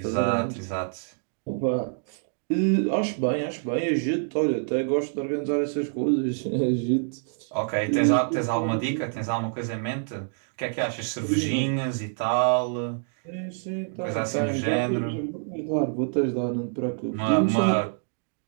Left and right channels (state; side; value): silent; left; digital silence